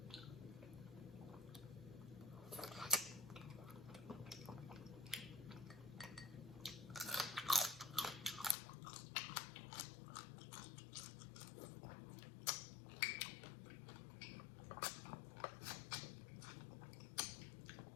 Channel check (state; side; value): drops out; right; at 8.6 s